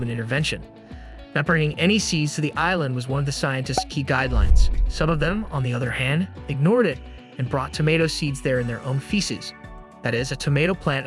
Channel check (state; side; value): identical; both; correlation 1.00